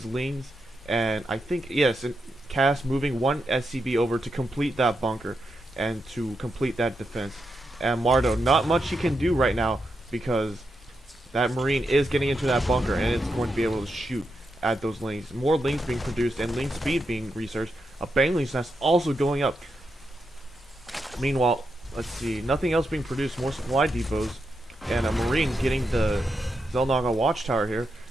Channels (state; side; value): normal; both; correlation 0.85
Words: Lings. And I think, yes, and Cass moving one SCV over to complete that bunker and to complete that defense. And Mardow, not much he can do right now because that Marine is getting into that bunker, and it's going to be able to shoot at those Lings. More Lings being produced and Ling speed being researched. A Bangling's nest also going up. Meanwhile, let's see, nothing else being produced. More supply depots, and a Marine getting the xel'naga watchtower here.